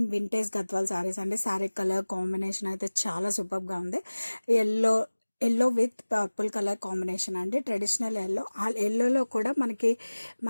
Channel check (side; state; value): both; inverted; correlation -1.00